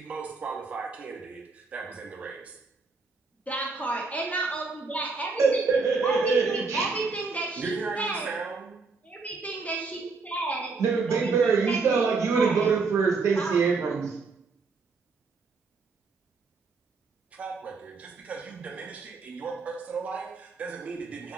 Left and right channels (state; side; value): quieter; left; 4.4 dB